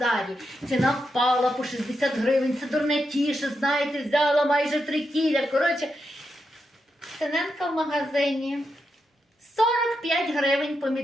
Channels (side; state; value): both; normal; correlation 0.85